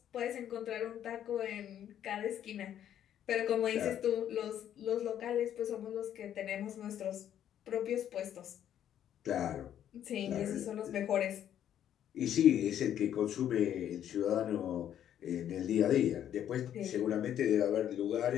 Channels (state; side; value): quieter; right; 10.4 dB